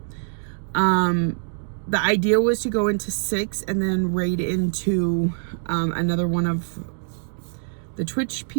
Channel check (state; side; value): silent; left; digital silence